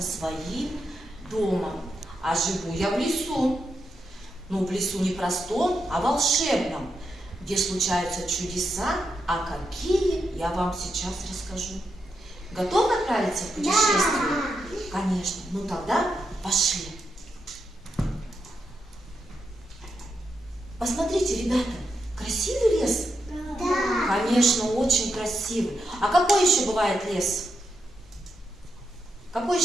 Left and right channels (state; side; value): normal; both; correlation 0.84